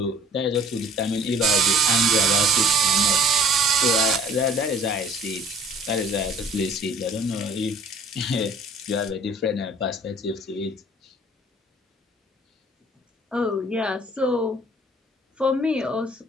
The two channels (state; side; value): normal; both; correlation 0.54